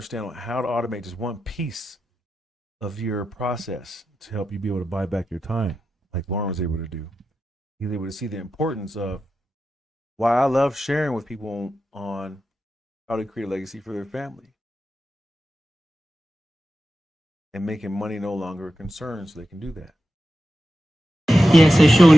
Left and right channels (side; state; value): both; normal; correlation 0.90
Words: how to automate just one piece of your process to help you be able to buy back your time, like Lauren was able to do. He's able to see the importance of why I love sharing with people on how to create a legacy for their family and making money no longer a concern so they can do that. Yeah, so Sean,